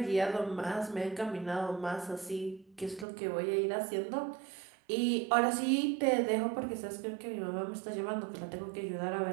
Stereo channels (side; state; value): left; drops out; at 3.1 s